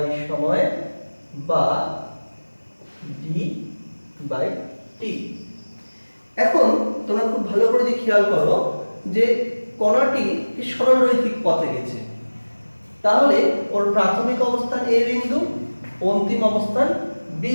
সময় বা ডি বাই টি। এখন তোমরা খুব ভালো করে যে খেয়াল করো যে কণাটি সরলরৈখিক পথে গেছে, তাহলে ওর প্রাথমিক অবস্থান এ বিন্দু, অন্তিম অবস্থান বি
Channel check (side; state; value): both; inverted; correlation -1.00